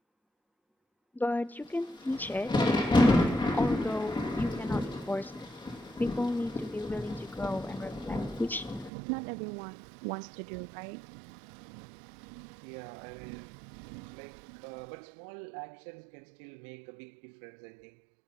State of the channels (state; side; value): drops out; left; at 8.9 s